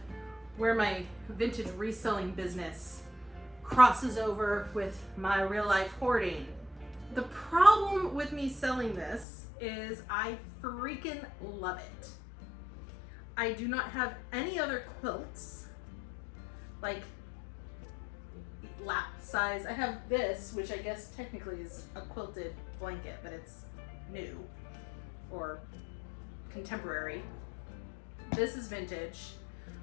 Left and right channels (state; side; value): drops out; right; at 9.2 s